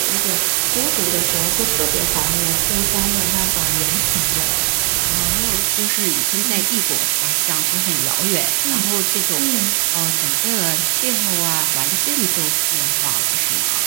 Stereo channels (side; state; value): left; silent; 62 dB below the other